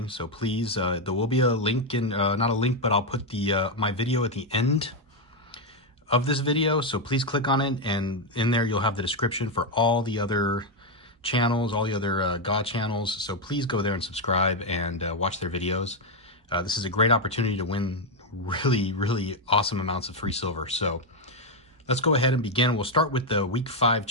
So please, there will be a link in, not a link, but I'll put the my video at the end of this video. So please click on it, and in there you'll have the description for all the other channels, all the other Ga channels. So please go there and subscribe and watch their videos. This is a great opportunity to win really awesome amounts of free silver. So let's go ahead and begin. We'll start with the week 5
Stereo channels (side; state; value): both; normal; correlation 0.04